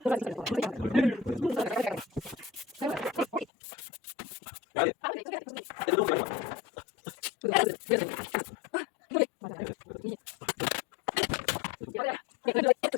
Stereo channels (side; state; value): right; drops out; at 3.5 s